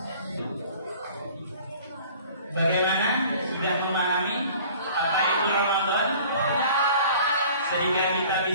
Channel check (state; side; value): inverted; both; correlation -0.48